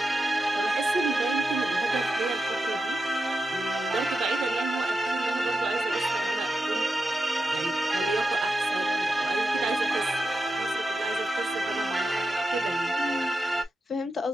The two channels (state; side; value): normal; both; correlation 0.89